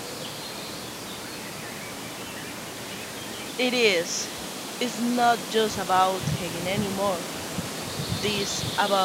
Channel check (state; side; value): identical; both; correlation 1.00